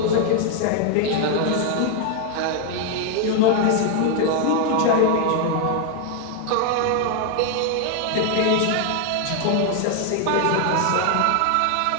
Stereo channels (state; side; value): different; both; correlation 0.00